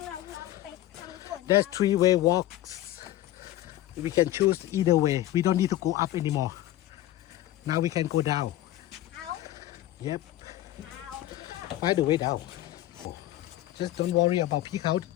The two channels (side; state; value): right; quieter; 14.5 dB